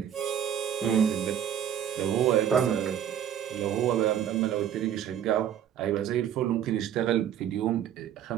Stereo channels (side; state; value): left; quieter; 9.8 dB